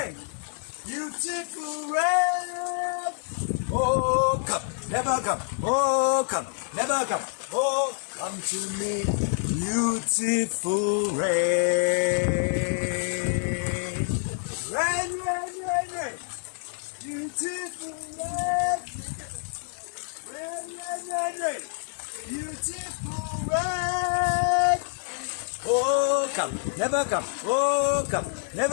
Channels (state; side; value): silent; right; digital silence